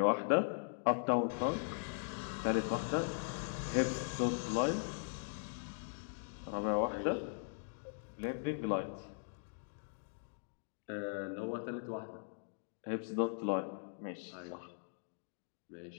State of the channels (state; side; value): silent; right; digital silence